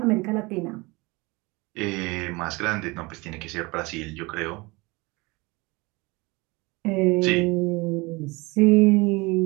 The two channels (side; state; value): left; quieter; 24.8 dB